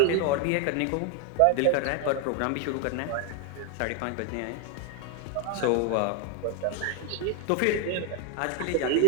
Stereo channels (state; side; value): different; both; correlation 0.01